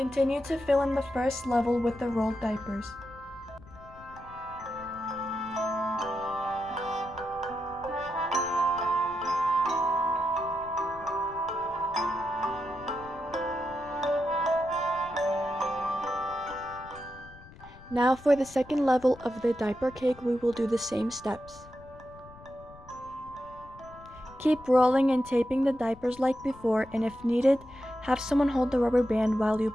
to fill in the first level with the rolled diapers. Now for the second level of the diaper cake, we will do the same steps. Keep rolling and taping the diapers like before, and if needed, have someone hold the rubber band while you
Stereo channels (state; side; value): noise; left; rumble, 20 dB below the sound